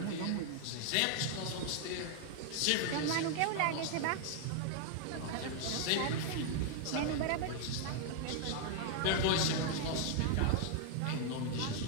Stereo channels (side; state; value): both; different; correlation 0.00